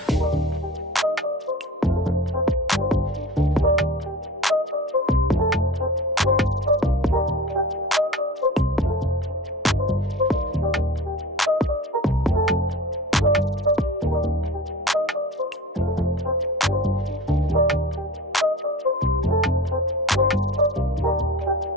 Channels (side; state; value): both; normal; correlation 0.37